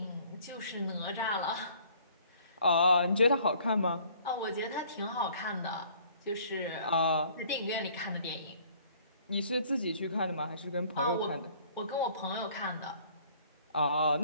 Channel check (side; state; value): both; inverted; correlation -0.57